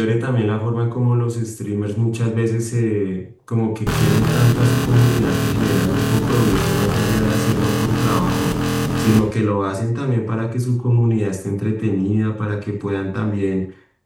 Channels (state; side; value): identical; both; correlation 1.00